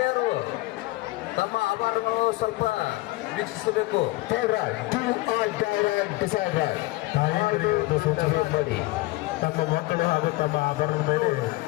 ತಮ್ಮ ಆಭರಣಗಳು ಸ್ವಲ್ಪ ವೀಕ್ಷಿಸಬೇಕು. ತಾಯಂದಿರಿಗೆ ಸೂಚನೆ ಮಾಡಿ ತಮ್ಮ ಮಕ್ಕಳು ಹಾಗೂ ತಮ್ಮ ಆಭರಣದ ಮೇಲೆ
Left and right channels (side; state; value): right; quieter; 20.3 dB